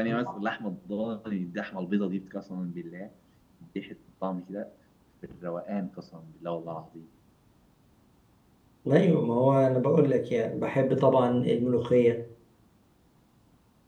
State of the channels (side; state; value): both; identical; correlation 1.00